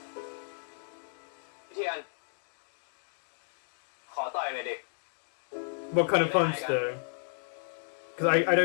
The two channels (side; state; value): right; silent; digital silence